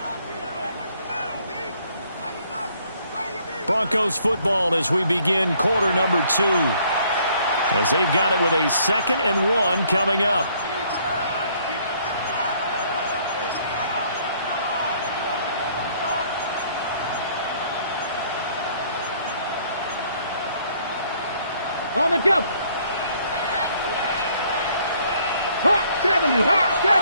Broncos football as we begin quarter number 2. As they've got it with a 2nd and 1 coming up. On the jump. Hawk 70. Hawk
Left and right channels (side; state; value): both; inverted; correlation -0.63